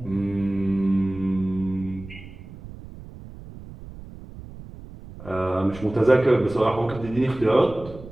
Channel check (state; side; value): noise; right; rumble, 16 dB below the sound